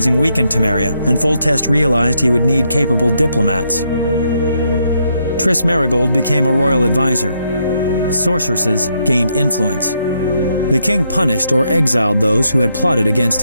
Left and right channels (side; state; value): both; inverted; correlation -0.77